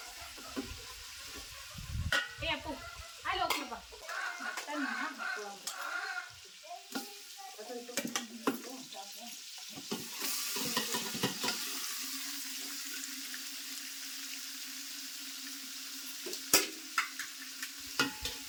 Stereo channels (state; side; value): identical; both; correlation 1.00